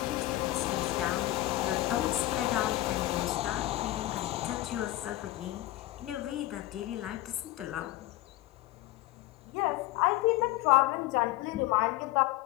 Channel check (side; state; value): right; quieter; 16.8 dB